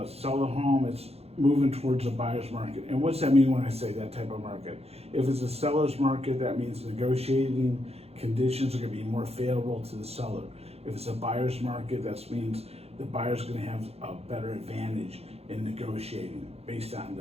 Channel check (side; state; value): left; late; 0.29 ms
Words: sell a home, it's moving towards a buyer's market. And what's that mean when I say that type of market? If it's a seller's market, that means negotiating conditions are going to be more favorable to the seller. If it's a buyer's market, that means the buyer's going to have a better advantage in negotiating based on